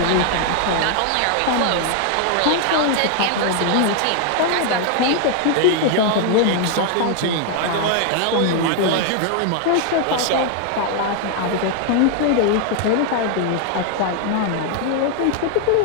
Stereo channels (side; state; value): both; different; correlation 0.00